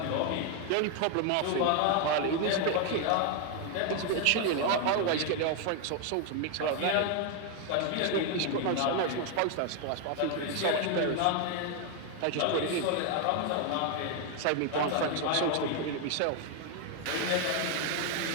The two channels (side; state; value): both; different; correlation 0.01